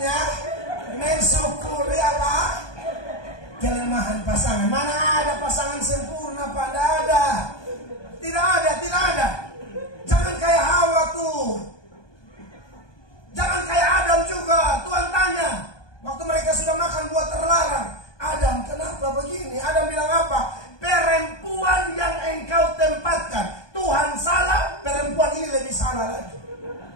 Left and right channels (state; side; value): late; right; 1.2 ms